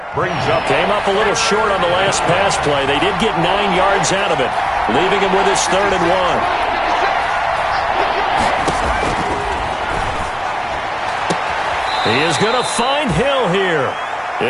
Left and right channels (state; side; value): identical; both; correlation 1.00